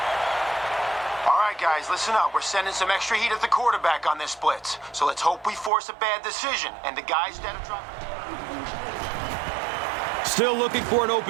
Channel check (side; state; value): left; drops out; at 5.7 s